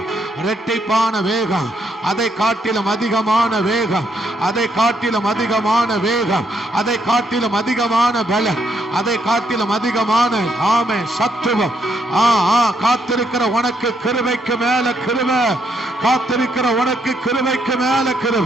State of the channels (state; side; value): normal; both; correlation 0.75